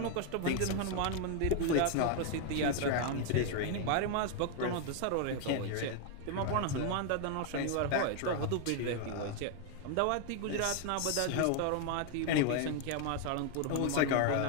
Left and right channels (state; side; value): different; both; correlation 0.01